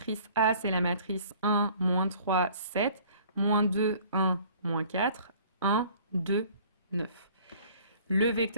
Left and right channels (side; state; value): both; inverted; correlation -0.52